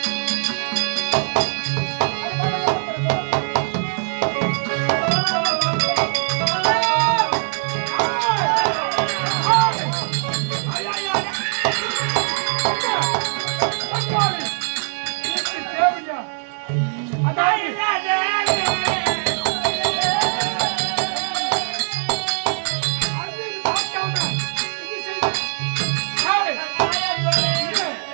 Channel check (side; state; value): left; silent; digital silence